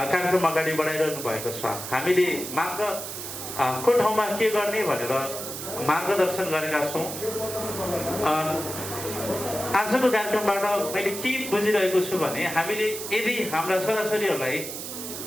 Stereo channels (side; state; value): right; noise; hiss, 8 dB below the sound